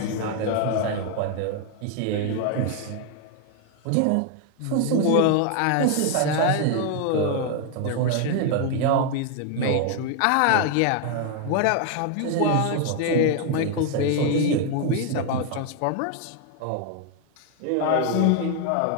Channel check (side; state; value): both; different; correlation 0.00